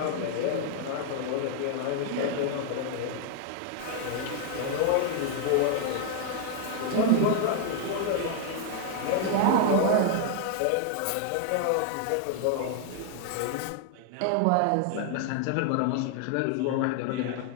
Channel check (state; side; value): different; both; correlation 0.00